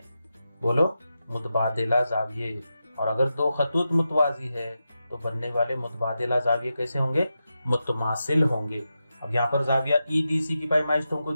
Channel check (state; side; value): inverted; both; correlation -0.89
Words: बोलो, मुतबादिला जाविये। और अगर दो खतूत मुतवाजी है तो बनने वाले मुतबादिला जाविये कैसे होंगे, मुतमासिल होंगे। अब यहाँ पर जाविया ई डी सी की पैमाइश तुमको